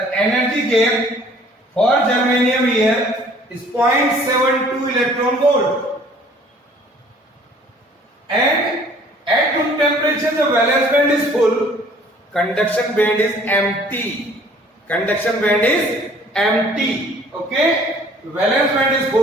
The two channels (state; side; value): normal; both; correlation 0.55